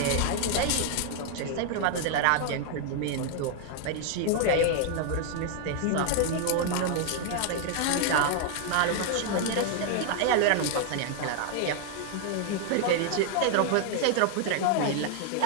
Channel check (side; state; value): both; different; correlation 0.00